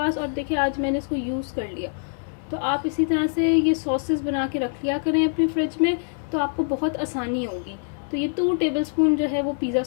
और देखिए आज मैंने इसको यूज़ कर लिया। तो आप इसी तरह से ये सॉसेस बना के रख लिया करें अपनी फ्रिज में, तो आपको बहुत आसानी होगी। तो ये 2 टेबलस्पून जो है वो पिज़्ज़ा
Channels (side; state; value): right; silent; digital silence